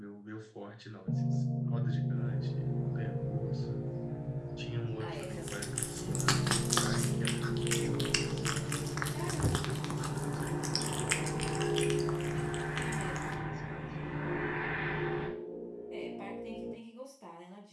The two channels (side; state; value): both; identical; correlation 1.00